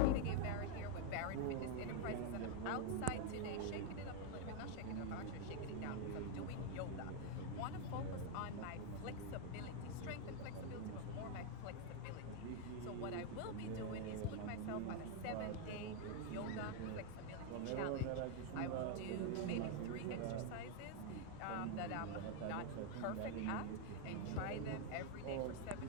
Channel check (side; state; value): both; different; correlation 0.00